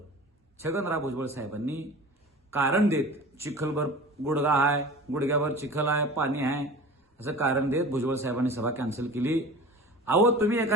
छगनराव भुजबळ साहेबांनी कारण देत चिखलभर गुडगा आहे, गुडघ्यावर चिखल आहे, पाणी आहे असं कारण देत भुजबळ साहेबांनी सभा कॅन्सल केली। अहो तुम्ही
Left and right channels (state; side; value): normal; both; correlation 0.38